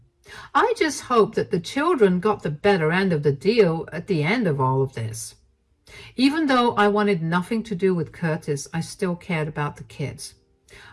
I just hoped that the children got the better end of the deal at the end of all of this. Even though I wanted nothing to do with Curtis, I still cared about the kids.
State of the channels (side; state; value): both; identical; correlation 1.00